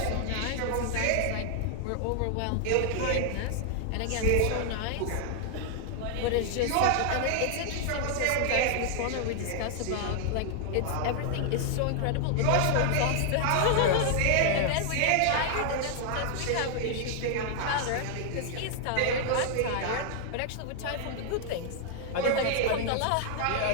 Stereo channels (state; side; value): different; both; correlation 0.00